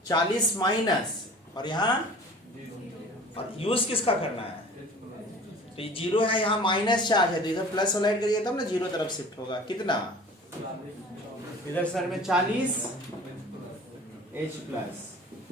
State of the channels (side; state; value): both; normal; correlation 0.44